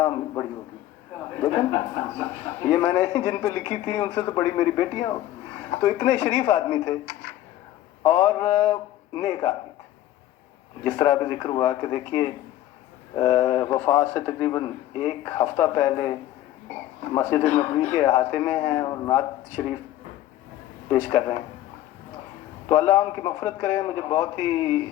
بڑی ہو گئی، لیکن یہ میں نے جن پہ لکھی تھی ان سے تو بڑی میری بیٹیاں ہو۔ تو اتنے شریف آدمی تھے اور نیک آدمی تھے۔ جس طرح بھی ذکر ہوا کہ دیکھیے وفات سے تقریباً 1 ہفتہ پہلے مسجد نبوی کے احاطے میں ہیں اور نعت شریف پیش کر رہے ہیں۔ تو اللہ ان کی مغفرت کرے۔ مجھے بہت ہی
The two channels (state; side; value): quieter; right; 13.8 dB